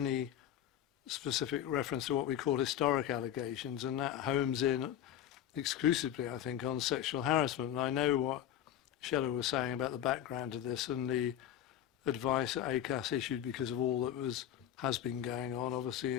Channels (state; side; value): quieter; right; 11.0 dB